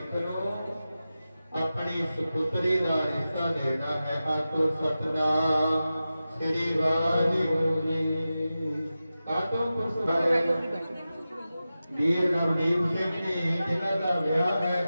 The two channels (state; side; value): inverted; both; correlation -0.93